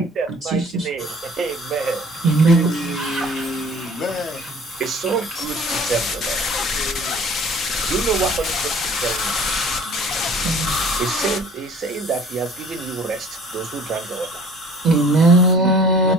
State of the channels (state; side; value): normal; both; correlation 0.50